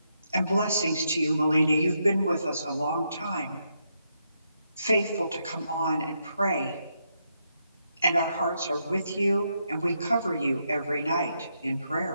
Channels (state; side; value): inverted; both; correlation -0.80